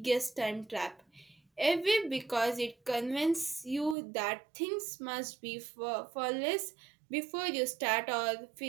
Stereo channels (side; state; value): left; drops out; at 4.0 s